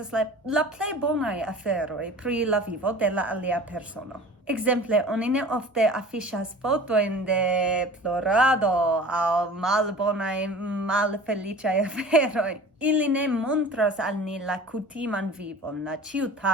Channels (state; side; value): normal; both; correlation 0.41